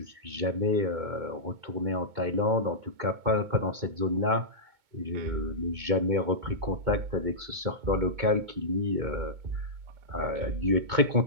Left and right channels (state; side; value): late; left; 2.2 ms